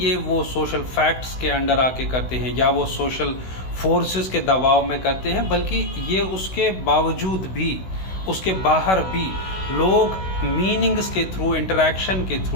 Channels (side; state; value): right; late; 16 ms